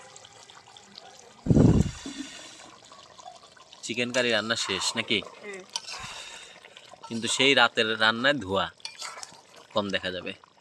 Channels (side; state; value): both; identical; correlation 1.00